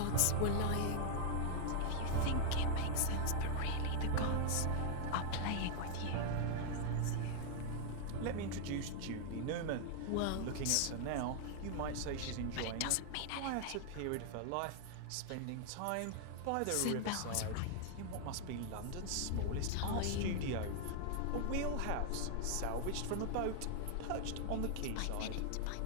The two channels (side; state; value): both; different; correlation 0.00